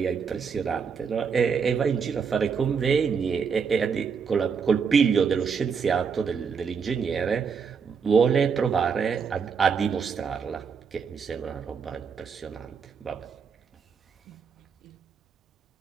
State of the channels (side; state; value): left; quieter; 6.1 dB